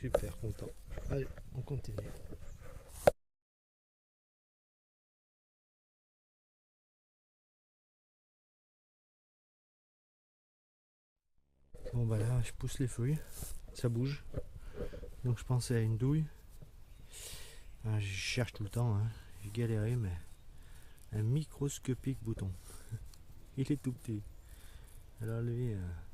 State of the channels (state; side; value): identical; both; correlation 1.00